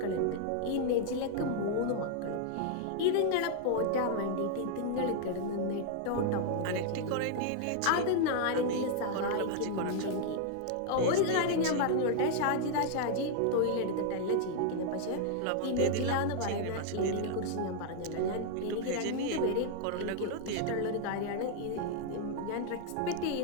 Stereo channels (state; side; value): different; both; correlation 0.00